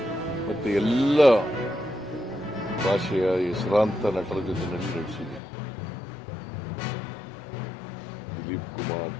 ಮತ್ತೆ ಎಲ್ಲ ಭಾಷೆಯ ಹೆಸರಾಂತ ನಟರ ಜೊತೆ ನಟಿಸಿದೆ. ದಿಲೀಪ್ ಕುಮಾರ್,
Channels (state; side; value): drops out; right; at 5.4 s